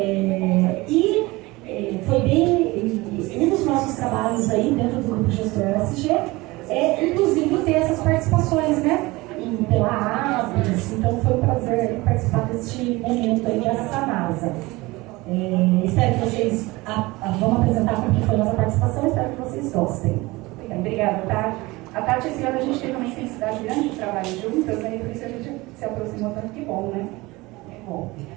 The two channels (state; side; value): quieter; left; 21.7 dB